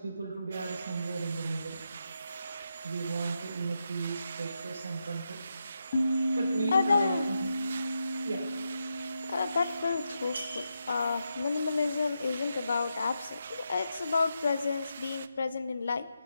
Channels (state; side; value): inverted; both; correlation -0.86